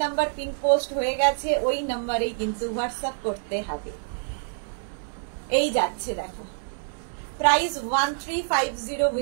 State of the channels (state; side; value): silent; left; digital silence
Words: নাম্বার পিন পোস্ট হয়ে গেছে, ওই নাম্বারেই কিন্তু হোয়াটসঅ্যাপ করতে হবে। এই যাচ্ছে দেখো, প্রাইস 1350